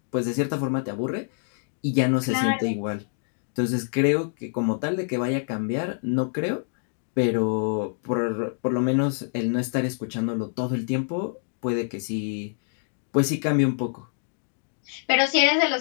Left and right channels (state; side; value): silent; right; digital silence